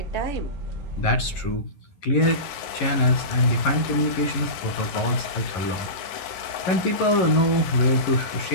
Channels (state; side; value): late; right; 11 ms